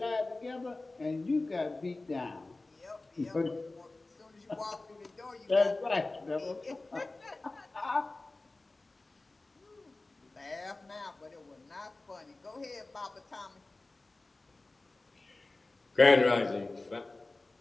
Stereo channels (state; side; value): quieter; right; 3.1 dB